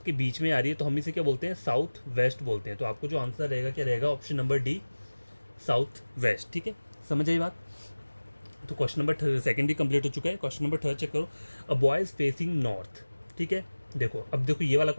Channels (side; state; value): both; inverted; correlation -1.00